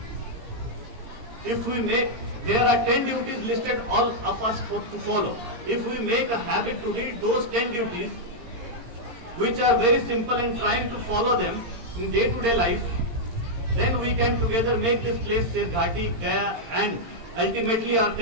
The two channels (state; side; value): late; left; 17 ms